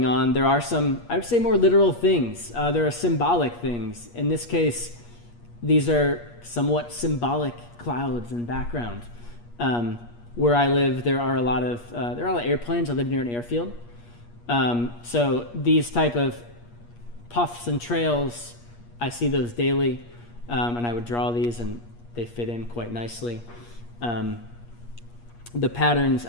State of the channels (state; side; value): late; right; 8.4 ms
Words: on. There are some, I would say, more literal things. There are symbolic things. In this case, these are somewhat symbolic clouds in background. Where I live, there are a lot of airplanes. I live near an airfield. So these type of puffs and trails, I see those daily, and I would draw these, and they fit in quite nicely. The patterns